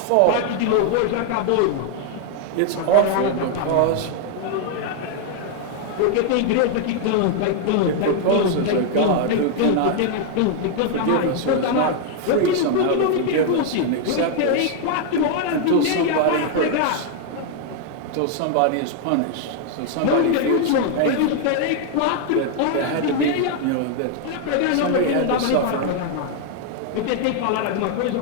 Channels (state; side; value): different; both; correlation 0.00